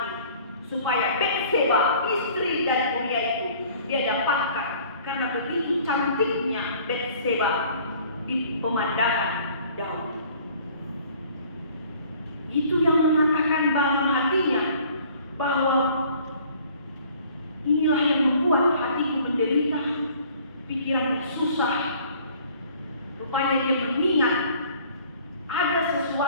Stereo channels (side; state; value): both; inverted; correlation -0.54